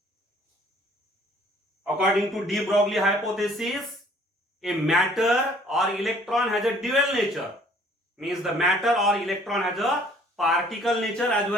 According to de Broglie hypothesis, a matter or electron has a dual nature. Means the matter or electron has a particle nature as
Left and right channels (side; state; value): both; normal; correlation 0.57